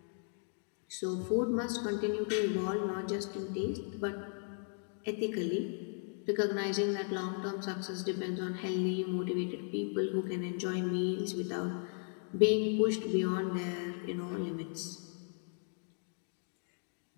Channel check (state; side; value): silent; right; 54 dB below the other